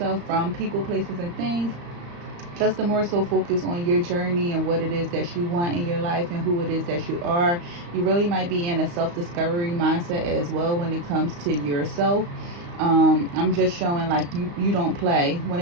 from people, places, and things, just to more so focus on your journey and what it is that you want in your life and who it is that you are. You really might be in a self-discovery mindset as well when it comes to yourself. I'm just showing like you don't play. When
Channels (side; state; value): left; late; 35 ms